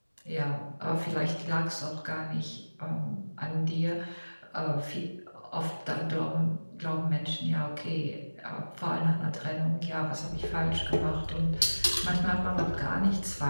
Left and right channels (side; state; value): both; inverted; correlation -1.00